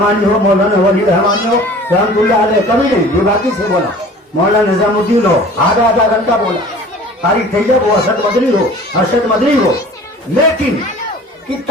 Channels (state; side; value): normal; both; correlation 0.45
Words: ہو, مولانا ولی رحمانی ہو رحمت اللہ علیہ, کبھی نہیں. یہ باقی سے بولا مولانا نظام الدین ہو, آدھا گھنٹہ بولا. قاری طیب ہو, ارشد مدنی ہو. لیکن